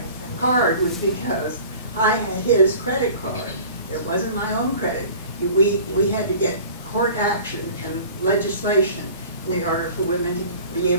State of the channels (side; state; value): both; inverted; correlation -0.44